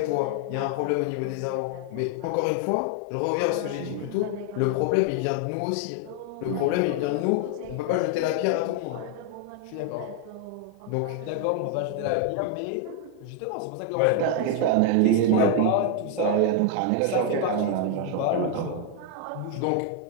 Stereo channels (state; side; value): different; both; correlation 0.00